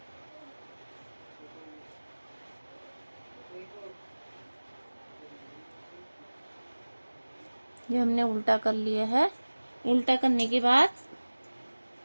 ये हमने उल्टा कर लिया है। उल्टा करने के बाद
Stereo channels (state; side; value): inverted; both; correlation -1.00